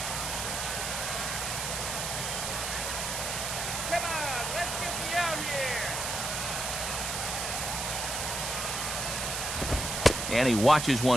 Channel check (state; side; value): noise; right; hiss, 2 dB below the sound